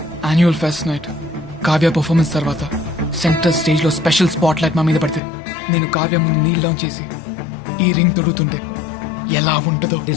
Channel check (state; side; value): drops out; right; at 5.2 s